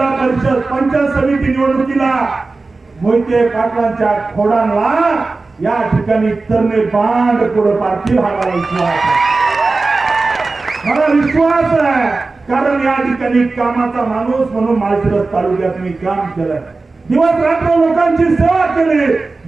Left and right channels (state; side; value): quieter; left; 3.7 dB